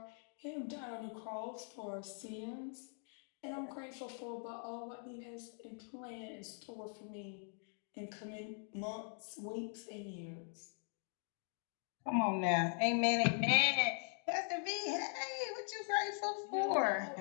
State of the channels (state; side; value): silent; right; 50 dB below the other